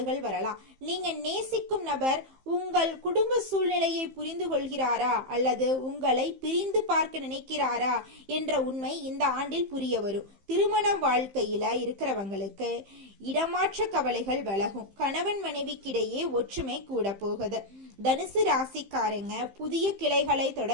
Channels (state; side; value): late; left; 15 ms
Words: வரலாம். நீங்க நேசிக்கும் நபர் உங்கள் குடும்ப சூழ்நிலையை புரிந்து கொள்கிறாரா அல்லது உங்களை பிரிந்து பார்க்க நினைக்கிறாரா என்ற உண்மை இந்த ஆண்டில் புரிய வரும். திருமண வாழ்க்கையில இருக்கிறவங்களுக்கு இடமாற்ற கவலைகள் விலகும். கணவன் மனைவிக்கிடையே ஒற்றுமை கூட போகுது. தனுசு ராசிக்காரங்க புதிய கிளைகளை